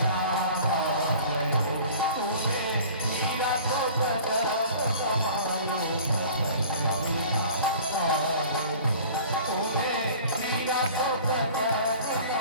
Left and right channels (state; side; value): inverted; both; correlation -0.45